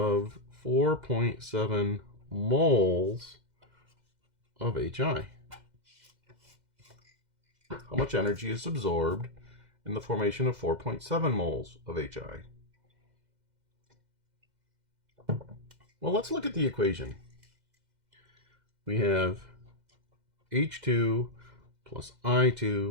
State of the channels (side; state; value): left; late; 2.0 ms